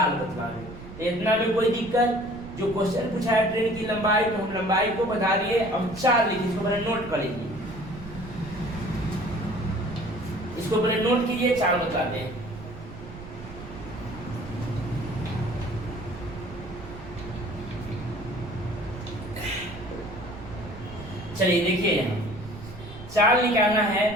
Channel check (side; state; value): right; noise; rumble, 14 dB below the sound